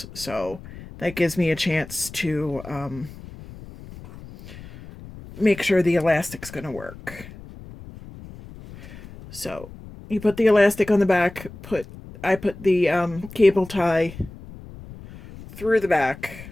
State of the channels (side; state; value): left; noise; rumble, 16 dB below the sound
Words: so that gives me a chance to make sure the elastic's going to work. So you put the elastic on the back, I put the cable tie through the back